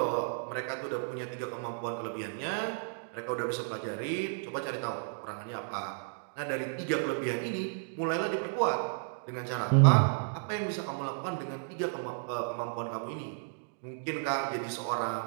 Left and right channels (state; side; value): silent; left; digital silence